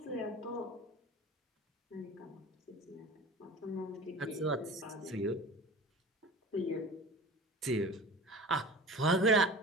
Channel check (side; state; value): both; normal; correlation 0.37